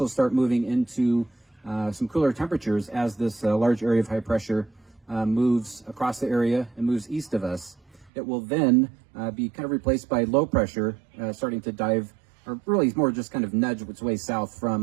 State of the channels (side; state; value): left; drops out; at 8.1 s